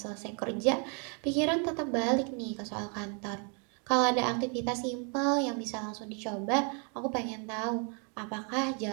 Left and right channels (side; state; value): left; quieter; 38.1 dB